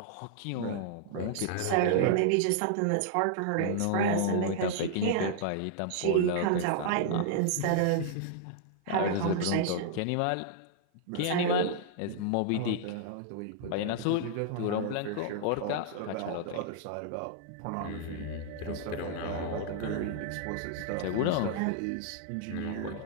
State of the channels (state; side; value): different; both; correlation -0.01